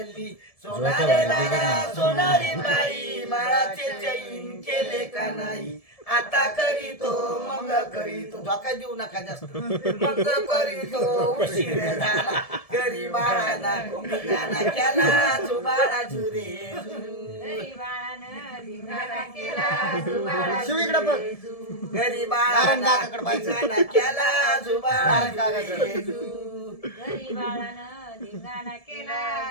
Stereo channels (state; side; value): late; right; 1.7 ms